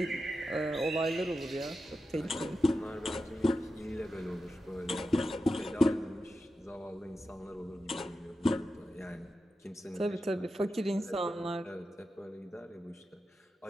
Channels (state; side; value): normal; both; correlation 0.90